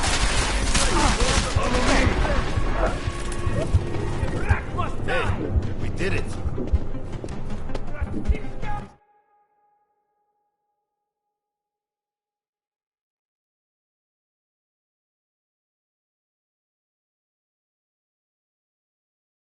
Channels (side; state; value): both; identical; correlation 1.00